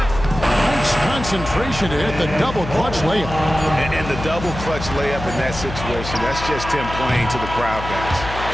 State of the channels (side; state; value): left; noise; hum, 9 dB below the sound